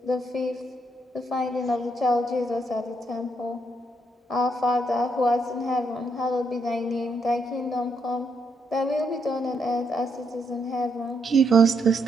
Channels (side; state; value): both; normal; correlation 0.77